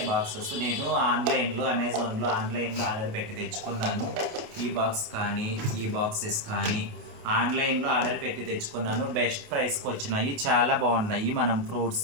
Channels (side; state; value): left; late; 28 ms